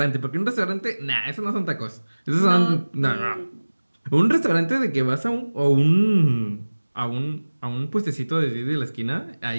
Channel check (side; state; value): both; inverted; correlation -1.00